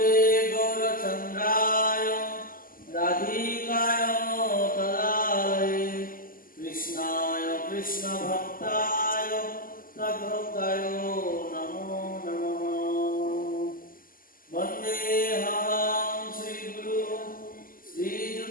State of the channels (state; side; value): late; right; 0.41 ms